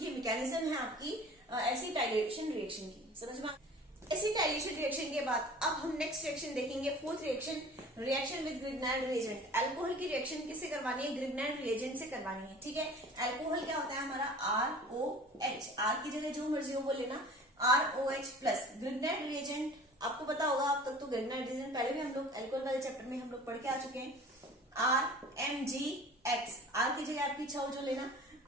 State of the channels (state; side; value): normal; both; correlation 0.43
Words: मैकेनिज्म है आपकी एसिटाइलेशन रिएक्शन की। समझ में एसिटाइलेशन रिएक्शन के बाद अब हम नेक्स्ट रिएक्शन देखेंगे, fourth reaction, reaction with Grignard reagent. Alcohol की रिएक्शन किससे करवानी है, ग्रिग्नाइड रिएजेंट से करवानी है। ठीक है, अल्कोहल क्या होता है हमारा, ROH, R की जगह जो मर्जी हो वो लेना, ROH प्लस। ग्रिग्नाइड रिएजेंट आपको पता होगा, अब तक तो ग्रिग्नाइड रिएजेंट पहले भी हम लोग अल्कोहल वाले चैप्टर में हम लोग पढ़ के आ चुके हैं। RMgX, R की जगह आपकी इच्छा हो जो लेना,